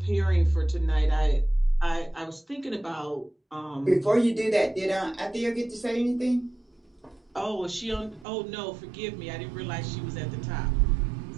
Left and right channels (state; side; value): drops out; left; at 8.2 s